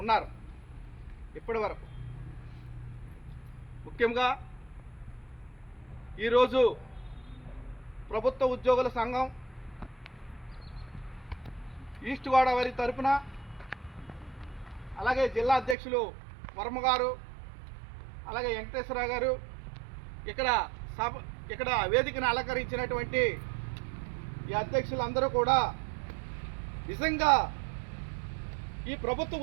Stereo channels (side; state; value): left; drops out; at 15.8 s